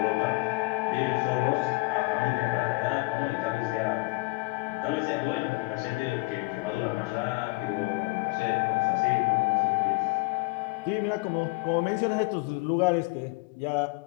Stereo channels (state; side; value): quieter; right; 25.6 dB